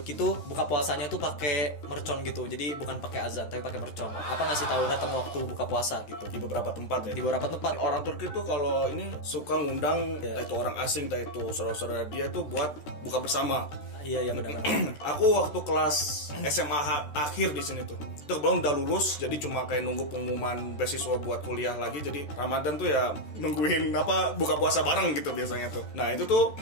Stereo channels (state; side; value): late; right; 13 ms